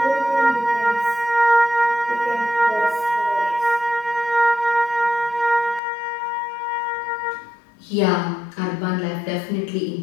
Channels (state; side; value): drops out; right; at 5.8 s